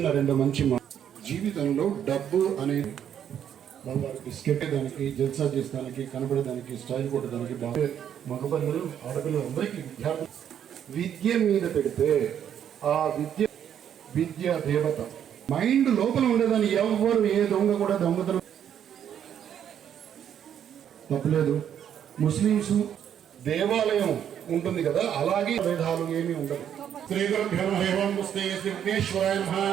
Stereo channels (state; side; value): quieter; left; 9.3 dB